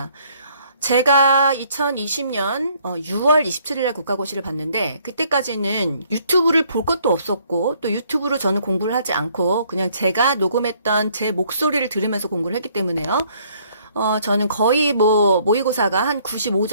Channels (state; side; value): inverted; both; correlation -0.64